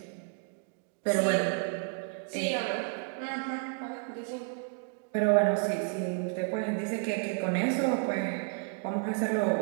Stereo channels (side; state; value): left; quieter; 37.9 dB